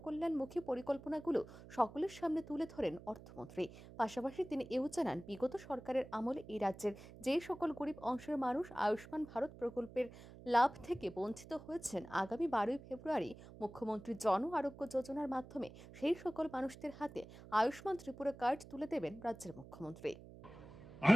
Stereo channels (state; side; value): noise; right; hum, 17 dB below the sound